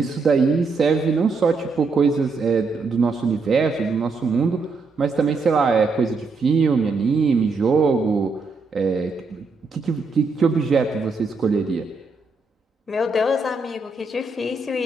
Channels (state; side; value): quieter; left; 4.0 dB